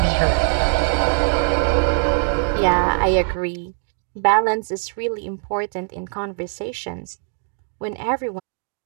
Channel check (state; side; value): silent; left; 57 dB below the other